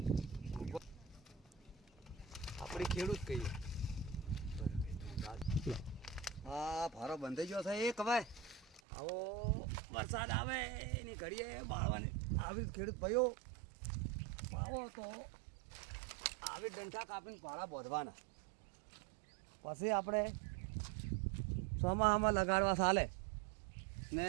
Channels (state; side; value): drops out; left; at 8.8 s